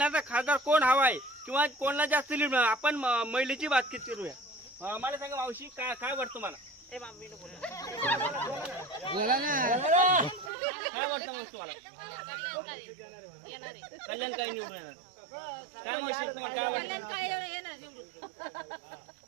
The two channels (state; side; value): drops out; left; at 10.5 s